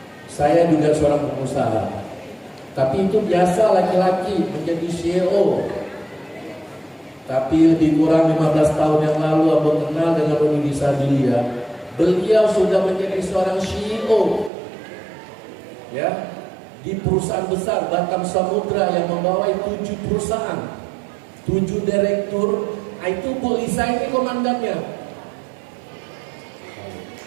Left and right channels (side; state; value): left; drops out; at 14.5 s